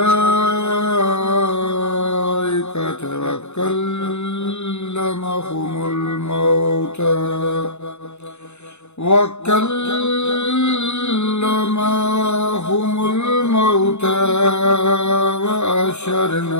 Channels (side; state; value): right; late; 0.82 ms